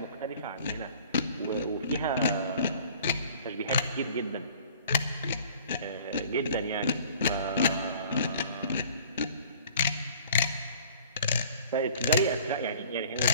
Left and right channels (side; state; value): both; inverted; correlation -0.50